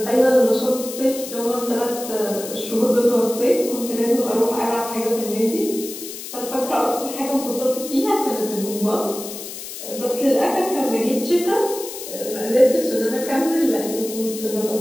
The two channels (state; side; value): noise; left; hiss, 10 dB below the sound